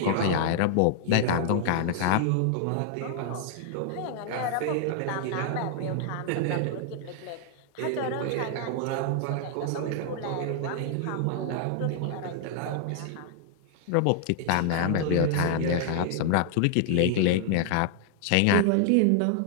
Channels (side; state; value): both; different; correlation -0.01